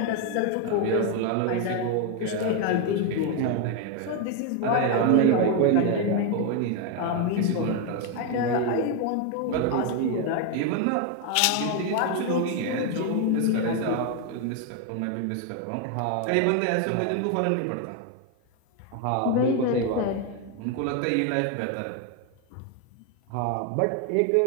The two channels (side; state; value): both; different; correlation 0.01